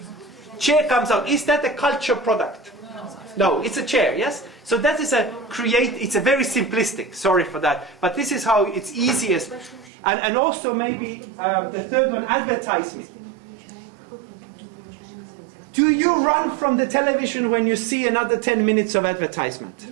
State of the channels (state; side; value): drops out; left; at 9.9 s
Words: Chair comes out. Is that a culture product? No, it's a chair, yes? So that is it's a very simplistic, sorry for that, but this is how it's easiest. And also maybe the third one, advertisement. Do you run from the television when you see another 10 minutes of advertisement?